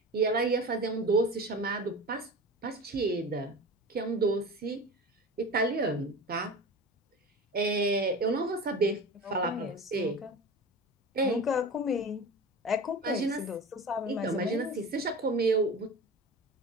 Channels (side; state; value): both; normal; correlation 0.32